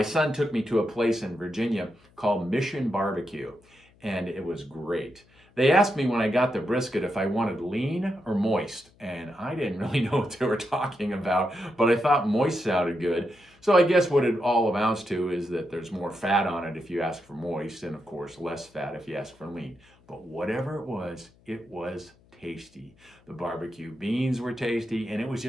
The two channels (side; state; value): left; noise; hum, 30 dB below the sound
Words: son took me to a place in Virginia called Mission Barbecue, and it was great. They asked me when I got the brisket if I wanted lean or moist, and I didn't really know what they were talking about, but I thought moist sounded good. So I guess what it all amounts to is that there's more fat on it if you ask for moist, and of course less fat if you ask for lean. But whatever it was tasty. The barbecue beans were tasty, and it was